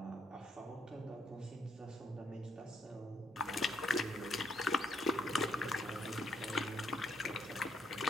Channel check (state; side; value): normal; both; correlation 0.73